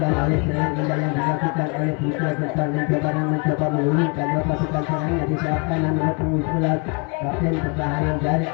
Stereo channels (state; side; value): quieter; right; 33.3 dB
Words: oleh serangan indah yang dilakukan oleh Putra Gempar mencoba mengulurkan dua pasukan serangnya di sayap kanan nomor punggung 11 kapten pertahanan dari